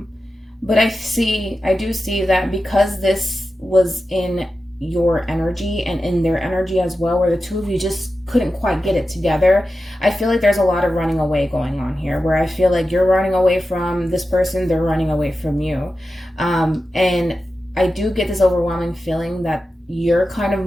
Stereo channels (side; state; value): both; normal; correlation 0.92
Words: I do see that because this was in your energy and in their energy as well, where the two of you just couldn't quite get it together, I feel like there's a lot of running away going on here, where I feel like you're running away from this person, they're running away from you. And I do get this overwhelming feeling that you're kind of